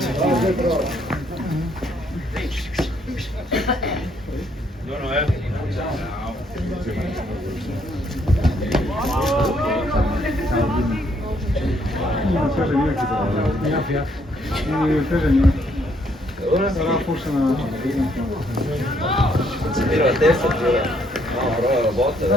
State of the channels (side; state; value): both; normal; correlation 0.69